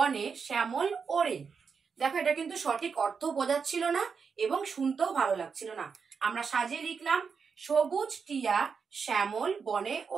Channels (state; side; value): quieter; left; 5.8 dB